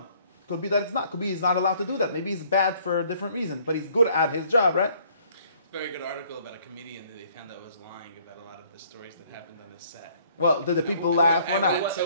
Could be that it's not. Could be he's not allowed to do that. Maybe he's bad for a different reason, but he's good at his job, right? Very good article about a comedian that they found out was lying about a lot of the stories that happened on his set. Well, did the people laugh or not? So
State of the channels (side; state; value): both; inverted; correlation -0.61